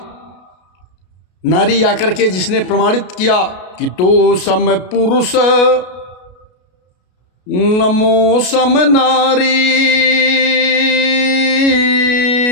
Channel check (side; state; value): right; late; 33 ms